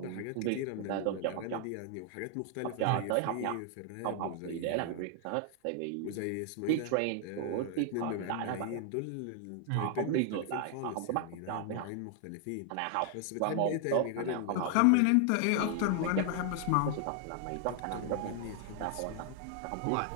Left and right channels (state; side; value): different; both; correlation 0.00